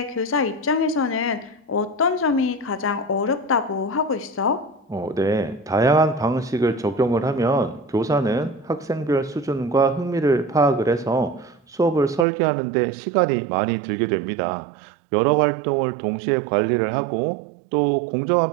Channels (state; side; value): drops out; left; at 12.2 s